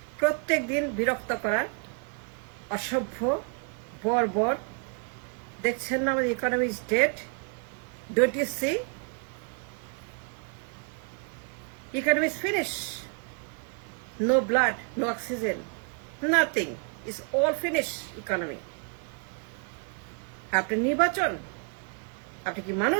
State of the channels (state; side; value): quieter; left; 39.0 dB